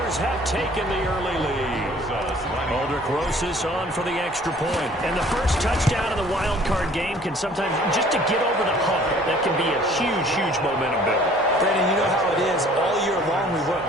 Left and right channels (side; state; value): both; normal; correlation 0.54